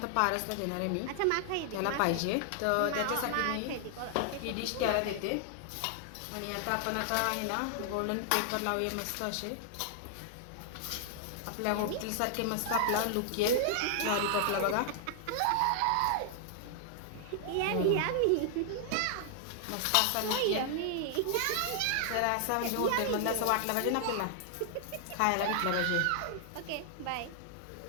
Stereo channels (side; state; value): both; different; correlation 0.00